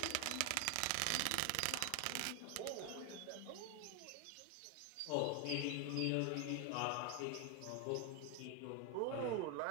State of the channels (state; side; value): different; both; correlation 0.01